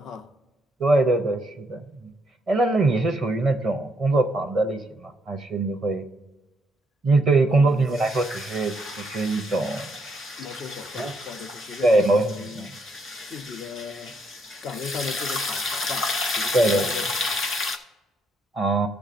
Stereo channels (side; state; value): both; normal; correlation 0.74